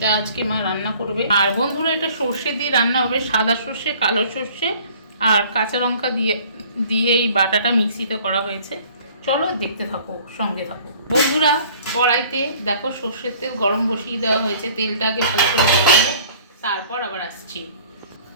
আজকে মা রান্না করবে। আর বন্ধুরা, এটা সর্ষে দিয়ে রান্না হবে, সাদা সর্ষে, কালো সর্ষে আর কাঁচা লঙ্কা দিয়ে দিয়ে এই বাটাটা মিক্সিতে করা হয়েছে। চলো দেখতে থাকো, সঙ্গে থাকো বন্ধুরা। কড়াইতে দেখো সর্ষের তেল গরম বসিয়ে দেওয়া হয়েছে। তেলটাকে ভালো করে গরম, তারপর আবার আসছি।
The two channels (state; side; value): inverted; both; correlation -0.52